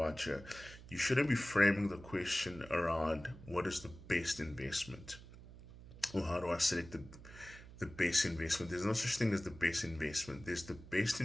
here? You shouldn't be framing the question around what is the best investment or how do I select the best investment. There's no such thing as the best investment, there's the best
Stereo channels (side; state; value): right; noise; hum, 17 dB below the sound